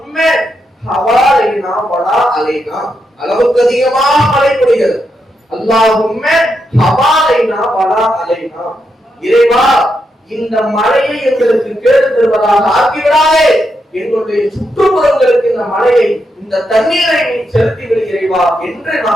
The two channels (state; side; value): normal; both; correlation 0.83